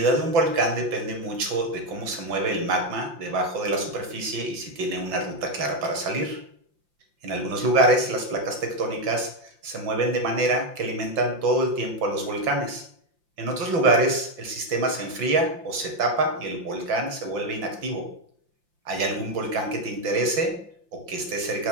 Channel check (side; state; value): left; late; 5.8 ms